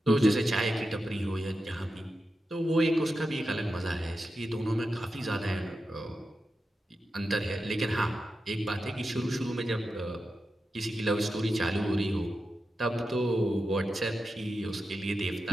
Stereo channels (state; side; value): normal; both; correlation 0.90